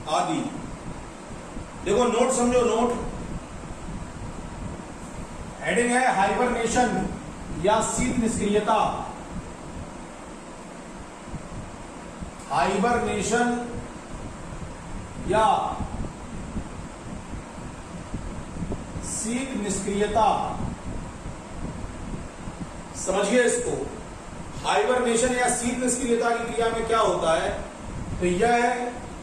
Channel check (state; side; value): identical; both; correlation 1.00